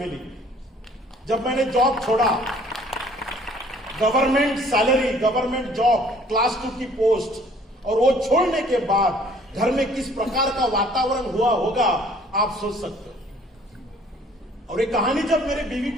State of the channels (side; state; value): both; normal; correlation 0.56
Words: जब मैंने जॉब छोड़ा, government salary, government job, class 2 की पोस्ट, और वो छोड़ने के बाद घर में किस प्रकार का वातावरण हुआ होगा आप सोच सकते हो। और ये कहानी जब मेरे बीवी